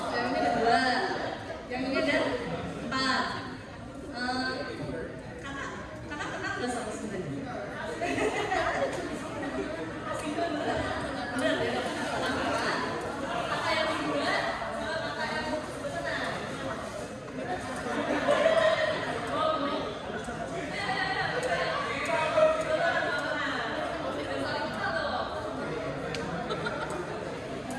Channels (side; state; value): both; identical; correlation 1.00